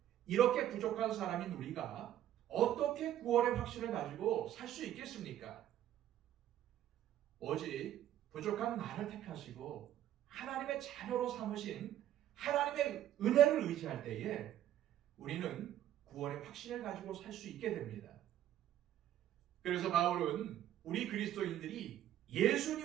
이렇게 부족한 사람인 우리가 어떻게 구원의 확신을 가지고 살 수 있겠습니까? 오직 부족한 나를 택하시고 하나님의 자녀로 삼으신 하나님의 은혜를 의지할 때에 우리는 구원의 확신을 가지고 살 수 있게 됩니다. 그래서 바울은 우리 그리스도인들이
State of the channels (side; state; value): left; quieter; 12.0 dB